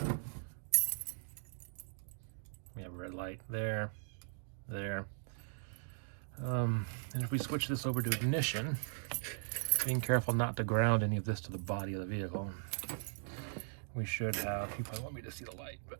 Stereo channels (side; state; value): left; silent; digital silence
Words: we have a red light there, there. And if we switch this over to ignition, being careful not to ground any of this to the body of the vehicle, we should have, you probably want me to see the light, but